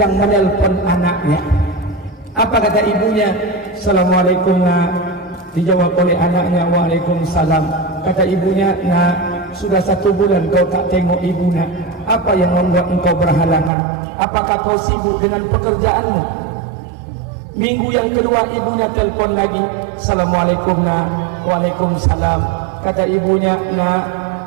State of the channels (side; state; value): left; drops out; at 13.7 s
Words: menelpon anaknya. Apa kata ibunya? Assalamualaikum, nak. Dijawab oleh anaknya, waalaikumsalam. Kata ibunya, nak, sudah 1 bulan kau tak tengok ibu, nak. Apa yang membuat engkau berhalangan? Apakah kau sibuk dengan pekerjaanmu? Minggu yang kedua ibunya telpon lagi. Assalamualaikum, nak. Waalaikumsalam. Kata ibunya, nak,